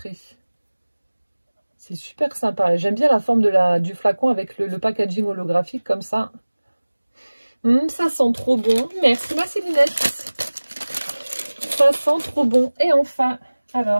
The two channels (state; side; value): inverted; both; correlation -1.00